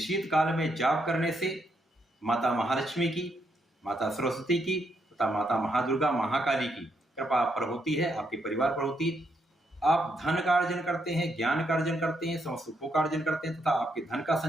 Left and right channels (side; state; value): both; normal; correlation 0.77